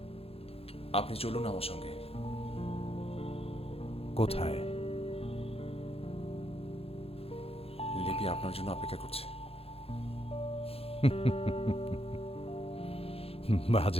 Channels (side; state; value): right; late; 0.28 ms